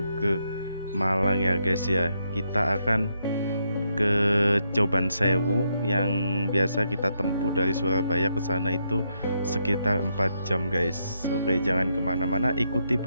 ke Malang ya guys ya. Kita akan ke Coban Sewu yang biasa kita tempuh dari Surabaya ke sana itu sekitar 4 jam guys. Oke, jangan kemana-mana, ikuti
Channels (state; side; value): inverted; both; correlation -0.79